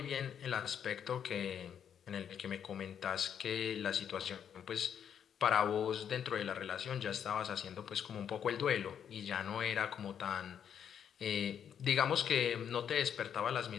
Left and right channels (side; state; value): right; quieter; 8.5 dB